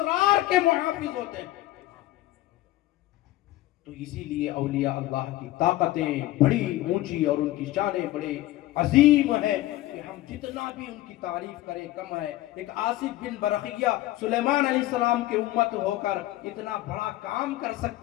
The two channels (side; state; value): right; quieter; 16.2 dB